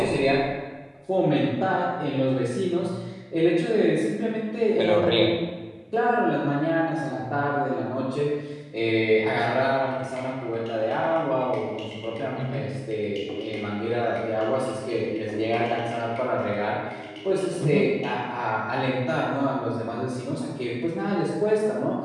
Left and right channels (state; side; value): identical; both; correlation 1.00